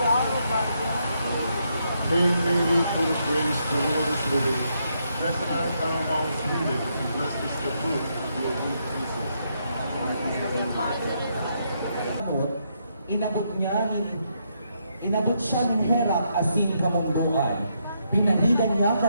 Hail Mary, full of grace, the Lord is with thee. Blessed art thou amongst women, and blessed is the fruit of your womb, Jesus. Inabot siya ng Herak asin kamunduan. Pinahilan niya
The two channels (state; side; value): inverted; both; correlation -0.78